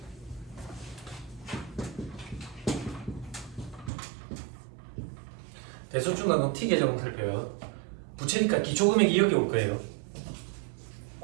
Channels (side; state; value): left; drops out; at 3.9 s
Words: 대손 충당금 T 계정을 살펴요. 부채니까 기초금액이 여기 올 거예요.